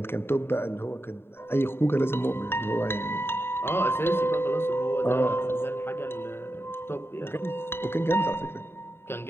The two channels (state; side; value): late; right; 0.11 ms